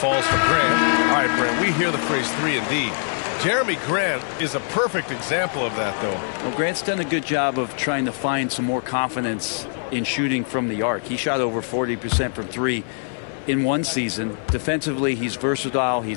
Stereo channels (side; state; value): right; silent; 58 dB below the other